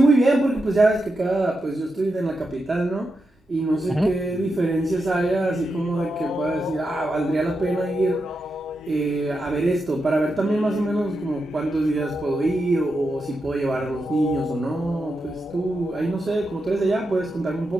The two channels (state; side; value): normal; both; correlation 0.87